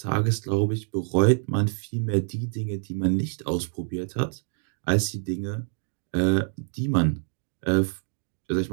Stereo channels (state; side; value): silent; left; 61 dB below the other